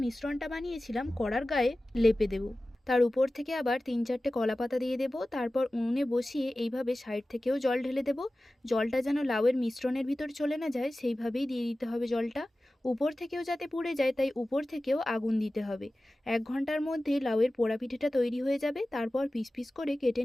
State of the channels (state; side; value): normal; both; correlation 0.96